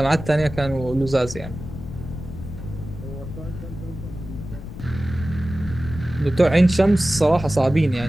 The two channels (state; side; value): noise; left; rumble, 11 dB below the sound